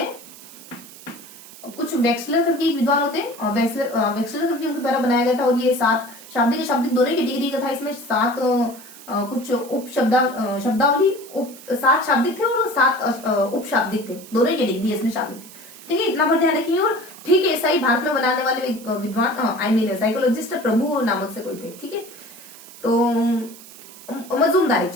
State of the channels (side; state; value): right; noise; hiss, 19 dB below the sound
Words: कुछ वेक्सलर करके एक विद्वान होते हैं, वेक्सलर करके उनके द्वारा बनाया गया था। और ये 7 शाब्दिक दोनों की डिग्री का था। इसमें 7 कुछ उप शब्दावली 7 शाब्दिक थे और 7 उप शाब्दिक थे, दोनों की डिग्री इसमें शामिल थी, ठीक है। इतना पर ध्यान रखिए। और ठीक है, ऐसा ही भारत में बनाने वाले विद्वान साइकोलॉजिस्ट प्रभु नामक से कोई थे, ठीक है। तो मजूमदार थे,